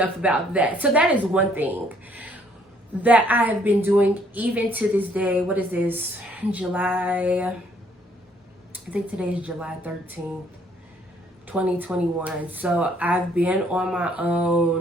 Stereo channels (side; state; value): both; normal; correlation 0.64